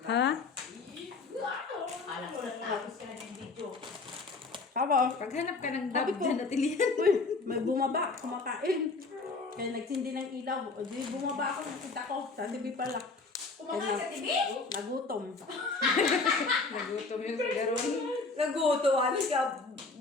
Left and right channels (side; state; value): right; quieter; 3.9 dB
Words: Ha? Alam ko natapos ka na ng video. Kabo, Paghanap ka ng Sabi dab ko. dyan at ilihan. may bumaba, kumakain. Kaya nagsindi ng ilaw. O di bumaba ako, nakita ko. Sa TV pala. Kumakain sa TV? Nagutom. Nagutom yung garon. Naguto. Ano siya?